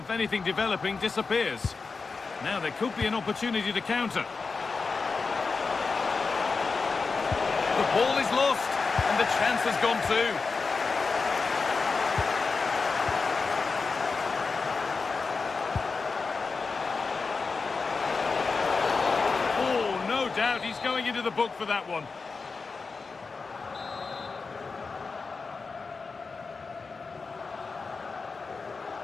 anything developing disappears. Now there could be an opportunity to counter. The ball is lost, and the chance has gone too. Oh, no doubt he's going into the book for that one.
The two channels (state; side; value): quieter; right; 4.5 dB